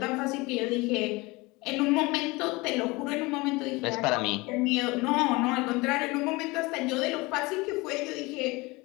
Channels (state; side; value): quieter; right; 23.5 dB